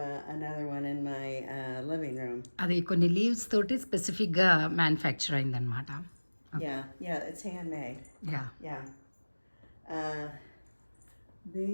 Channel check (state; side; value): inverted; both; correlation -1.00